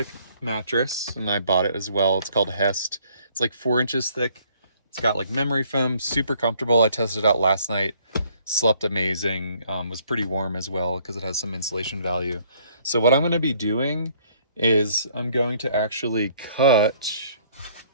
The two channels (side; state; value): both; inverted; correlation -0.62